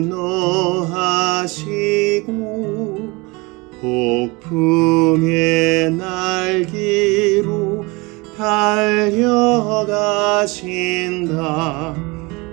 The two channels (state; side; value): quieter; left; 25.7 dB